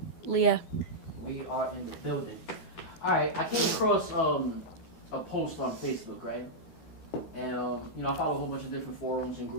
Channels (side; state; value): right; late; 12 ms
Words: Leah. We are in the building. Alright, I came across a post on Facebook, right? And I follow a whole bunch of different forums and